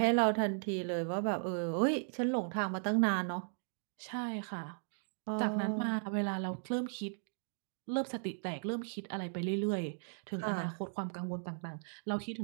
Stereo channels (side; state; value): left; silent; digital silence